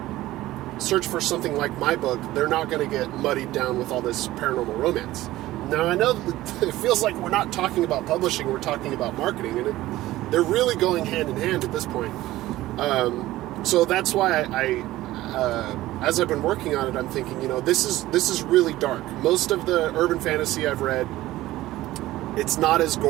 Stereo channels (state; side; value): quieter; left; 16.2 dB